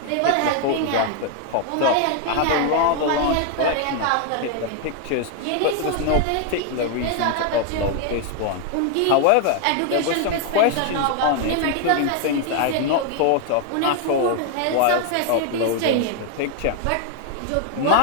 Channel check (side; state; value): both; different; correlation 0.00